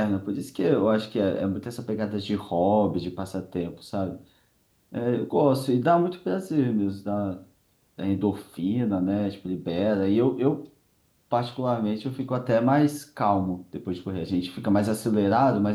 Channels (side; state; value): both; identical; correlation 1.00